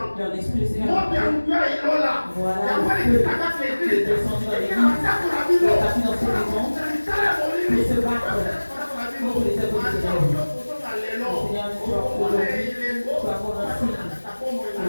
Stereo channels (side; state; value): both; inverted; correlation -1.00